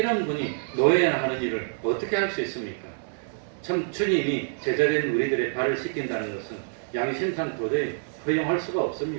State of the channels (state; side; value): silent; left; 60 dB below the other